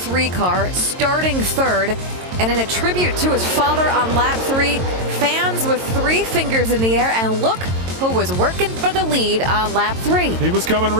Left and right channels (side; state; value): left; late; 22 ms